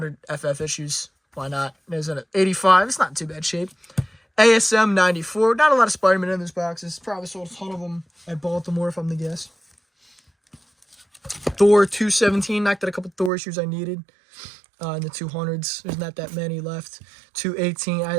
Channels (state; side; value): drops out; left; at 13.3 s